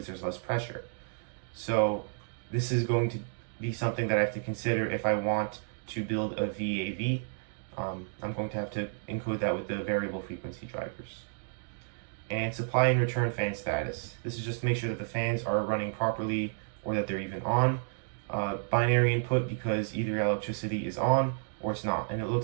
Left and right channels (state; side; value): silent; left; digital silence